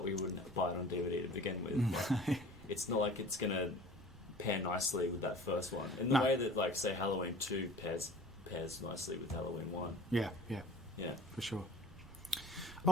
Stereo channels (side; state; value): right; noise; rumble, 19 dB below the sound